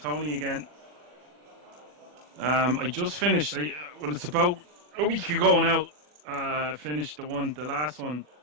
again. I just finished, well, it's about a week ago now. Finished the last one.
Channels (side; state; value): left; late; 40 ms